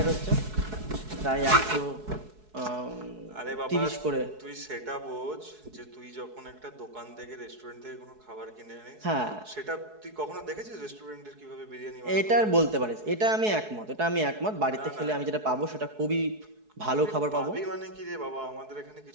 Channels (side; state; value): left; late; 4.7 ms